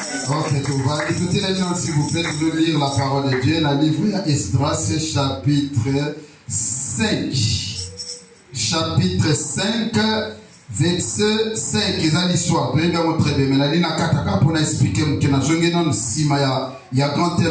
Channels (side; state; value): both; identical; correlation 1.00